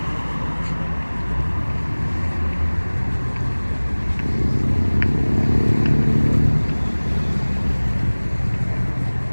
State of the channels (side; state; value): both; inverted; correlation -1.00